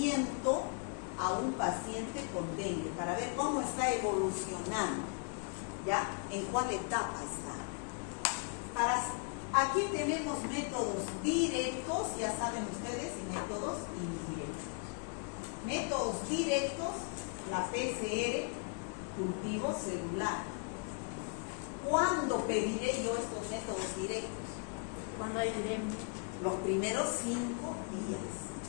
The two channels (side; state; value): right; quieter; 38.7 dB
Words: a un paciente con dengue, para ver cómo está evolucionando, ¿ya? En cuál etapa está. Aquí tenemos métodos directos, ya saben ustedes, y métodos indirectos. Métodos directos, la PCR, cultivo celular. ¿Cuándo pediré yo estos métodos directos? Cuando hay viremia. Los primeros 5 días,